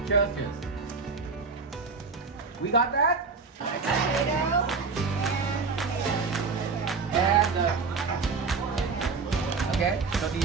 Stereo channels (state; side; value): quieter; left; 4.6 dB